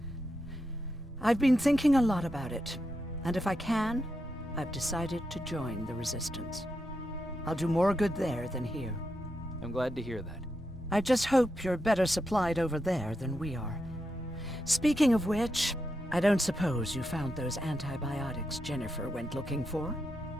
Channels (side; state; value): both; normal; correlation 0.85